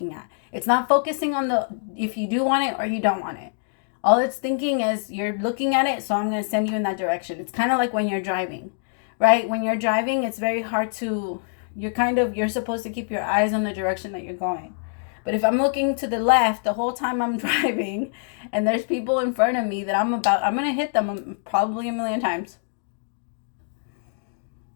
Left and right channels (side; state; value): right; silent; digital silence